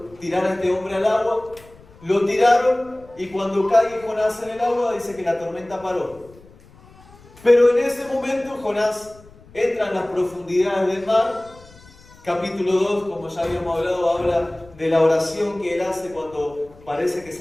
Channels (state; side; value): noise; left; rumble, 24 dB below the sound